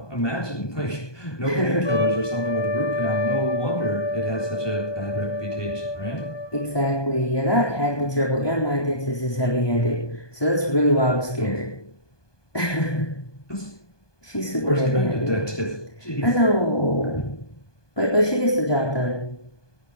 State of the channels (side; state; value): right; late; 1.2 ms